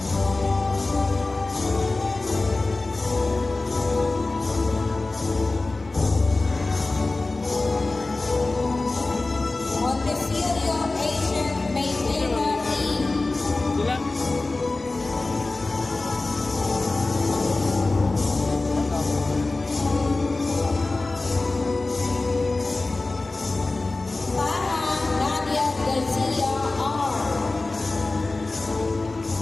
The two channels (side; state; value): right; quieter; 3.2 dB